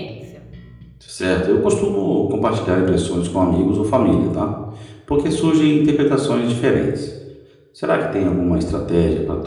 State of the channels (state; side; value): identical; both; correlation 1.00